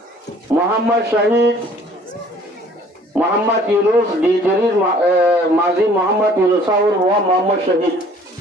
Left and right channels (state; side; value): normal; both; correlation 0.55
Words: মোহাম্মদ শহীদ মোহাম্মদ ইউনুস ডি জরির মাজি মোহাম্মদ ইউনুস সাউর ওয়া মোহাম্মদ শহীদ